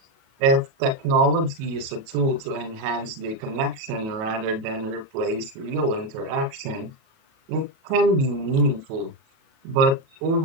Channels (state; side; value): late; left; 37 ms